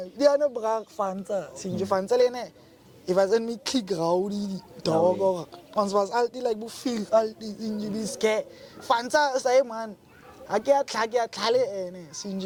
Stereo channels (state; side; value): identical; both; correlation 1.00